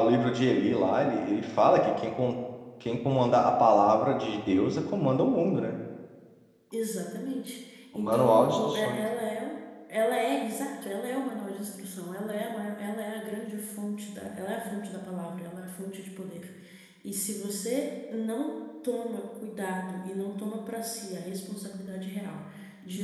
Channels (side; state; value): both; identical; correlation 1.00